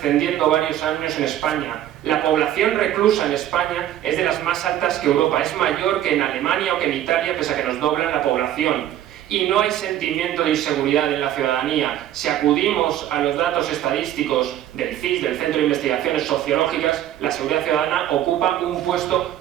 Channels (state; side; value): quieter; left; 12.0 dB